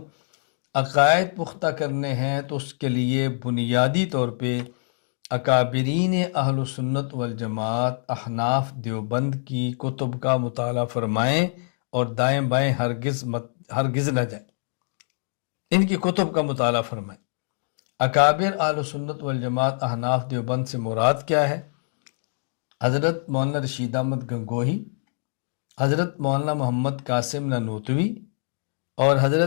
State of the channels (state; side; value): silent; right; digital silence